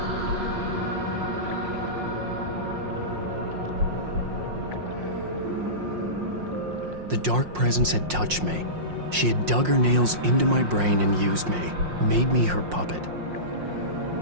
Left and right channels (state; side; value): late; left; 5.6 ms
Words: The dark presence had touched me. She had dug her nails into my brain and used me, made me her puppet.